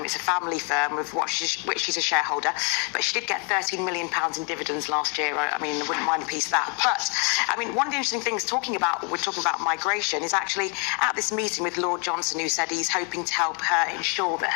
It's a family firm of which she's a shareholder, but she did get £13 million in dividends last year. I mean, I wouldn't mind a piece of that. But, I mean, one of the interesting things we're talking about migration, is actually at this meeting with Lord Johnson, who said he's hoping to help her ensure that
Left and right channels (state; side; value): quieter; right; 36.4 dB